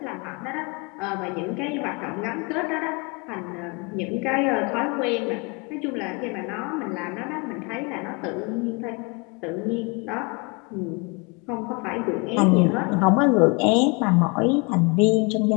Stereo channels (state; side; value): quieter; right; 30.2 dB